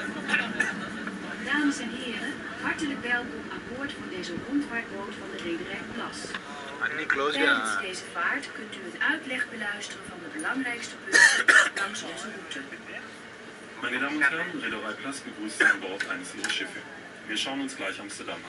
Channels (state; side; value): identical; both; correlation 1.00